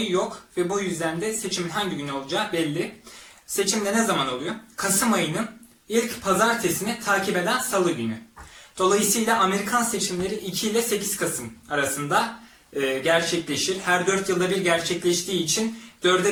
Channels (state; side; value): identical; both; correlation 1.00